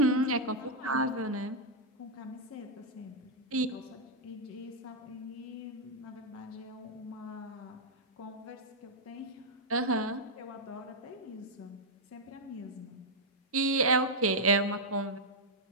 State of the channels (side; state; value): both; normal; correlation -0.05